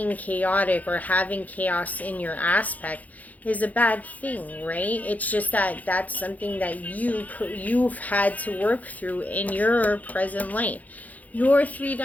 chaotic or having chaos in your aspect is a bad thing, right? It's just that that's something that you've had to work through in your present life. Your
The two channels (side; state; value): right; late; 0.078 ms